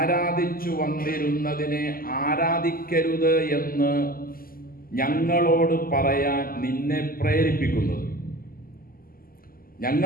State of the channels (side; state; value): right; late; 0.42 ms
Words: വന്നിരുന്നതിനെ ആരാധിക്കരുത് എന്ന് ഞങ്ങളോട് പറയാൻ നിന്നെ പ്രേരിപ്പിക്കുന്നത്?